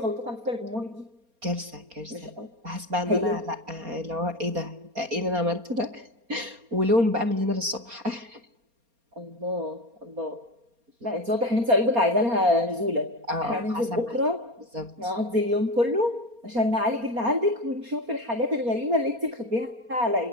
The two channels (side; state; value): left; late; 4.3 ms